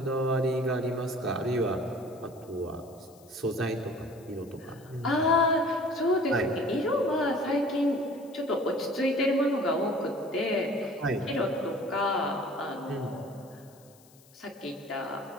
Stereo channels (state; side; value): noise; left; hiss, 27 dB below the sound